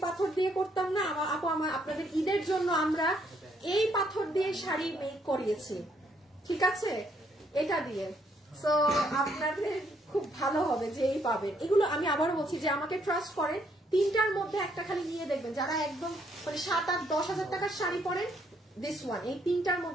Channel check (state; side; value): normal; both; correlation 0.70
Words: পাথর দিয়ে করতাম না আপু, আপনাদের ঈদের জন্য আমরা এই পাথর দিয়ে শাড়ি মেক করিয়েছি, ঠিক আছে এটা দিয়ে। সো আপনাদের খুব ভালো হবে যে এই পাবেন এগুলো। আমি আবারও বলছি যে আমাকে ট্রাস্ট করেন, 3টার মধ্যে একটা খালি নিয়ে দেখবেন, যারা একদম মানে 7-8-10 হাজার টাকার শাড়ি পরেন, দিস ওয়ান, এই 3টার